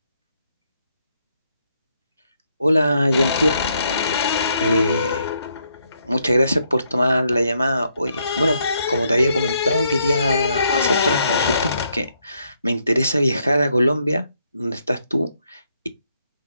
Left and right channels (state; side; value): inverted; both; correlation -0.75